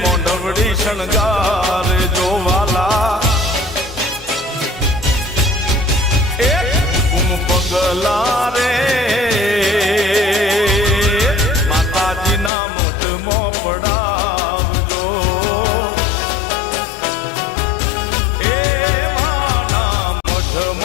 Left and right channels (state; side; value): drops out; right; at 12.5 s